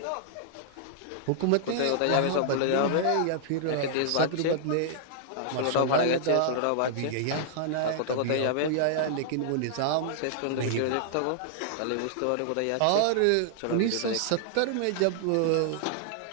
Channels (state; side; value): different; both; correlation -0.01